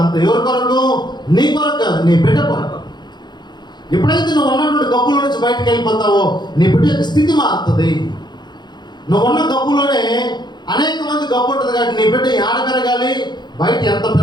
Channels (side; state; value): right; late; 0.21 ms